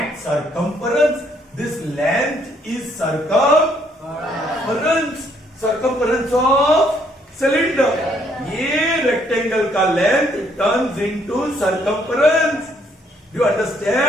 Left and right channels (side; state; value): both; normal; correlation 0.68